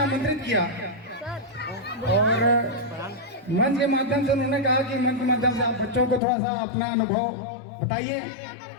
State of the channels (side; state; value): right; drops out; at 6.2 s